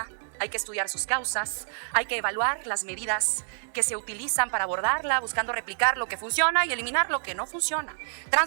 hay que estudiar sus causas, hay que evaluar las medidas que se utilizan para abordarla, buscando replicar lo que funciona y eliminar lo que no funciona,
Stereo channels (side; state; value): left; silent; digital silence